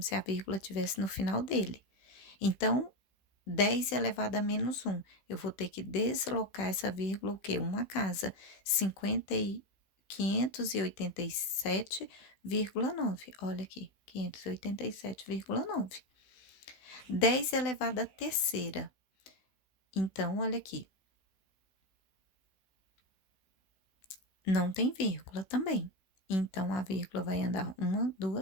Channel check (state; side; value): late; right; 15 ms